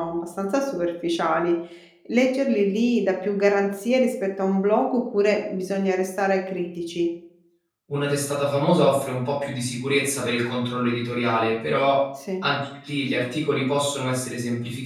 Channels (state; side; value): identical; both; correlation 1.00